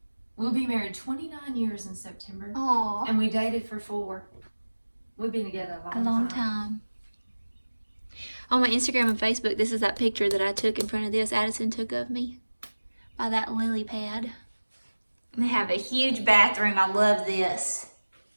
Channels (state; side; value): inverted; both; correlation -1.00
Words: We'll be married 29 years in September. Aww. And we dated for 4. We've been together a long time. On my Instagram and Facebook, this is that picture that I took in front of this. Addison took of me by that lily pad. They have a huge bathroom. I love this.